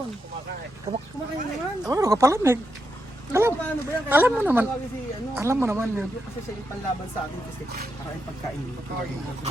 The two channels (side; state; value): both; normal; correlation 0.84